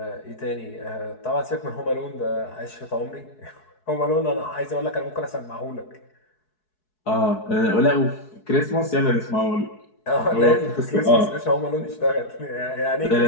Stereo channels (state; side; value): late; right; 4.7 ms